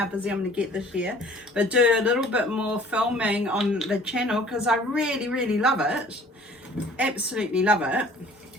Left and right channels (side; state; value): both; normal; correlation 0.51